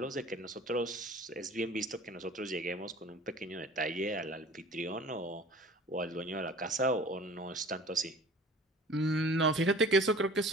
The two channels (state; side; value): normal; both; correlation 0.45